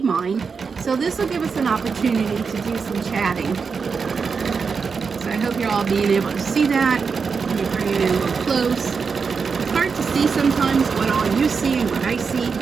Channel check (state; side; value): quieter; left; 5.4 dB